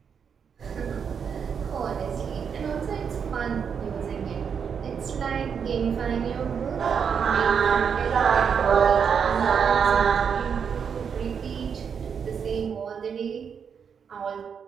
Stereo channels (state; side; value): quieter; left; 6.9 dB